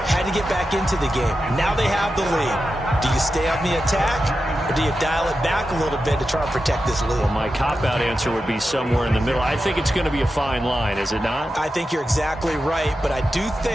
Had to get back into the game. Now they have the lead. Do you stay on the attack, or do you dial it back a little bit to try and protect this lead? Well, my cop-out answer would be somewhere in the middle. I think it's going to be a fine line, is it not? I think you're exactly right, but I do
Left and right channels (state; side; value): normal; both; correlation 0.90